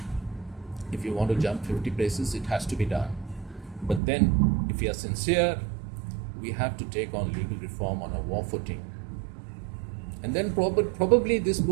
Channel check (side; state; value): left; drops out; at 4.0 s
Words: If you want to jump 50 places, it has to be done. But then, if we are sincere, we have to take on legal reform on a war footing. And then probably this